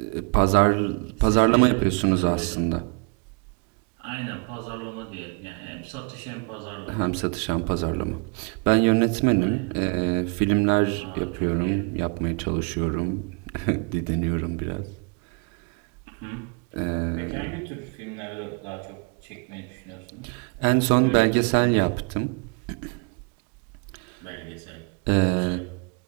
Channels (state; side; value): quieter; left; 33.3 dB